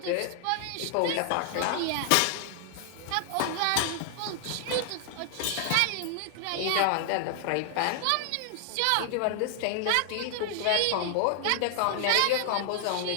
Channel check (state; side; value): different; both; correlation 0.00